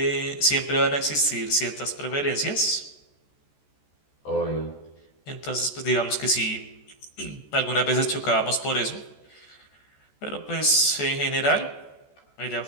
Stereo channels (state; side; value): late; right; 14 ms